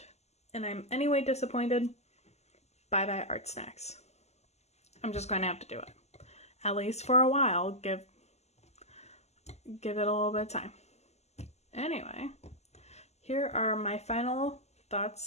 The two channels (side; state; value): right; late; 0.32 ms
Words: and I'm anyway disappointed, bye-bye ArtSnacks. I'm just going to have to do it. At least for a while. Give it a little bit of time. Anyway, here are my final